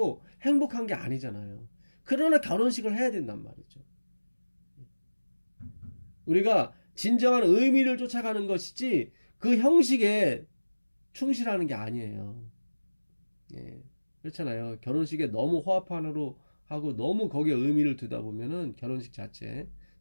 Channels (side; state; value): both; inverted; correlation -1.00